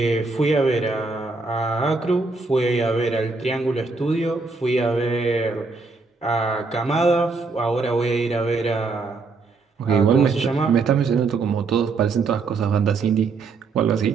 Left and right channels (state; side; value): quieter; left; 4.2 dB